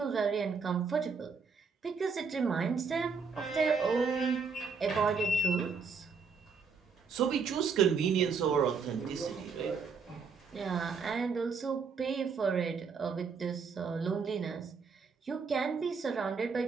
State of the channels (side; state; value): left; quieter; 5.3 dB